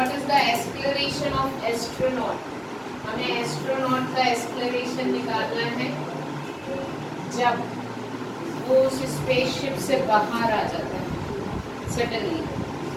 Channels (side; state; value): both; identical; correlation 1.00